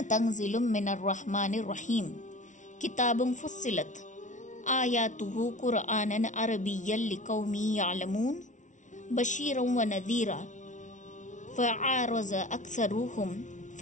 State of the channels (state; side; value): late; right; 0.37 ms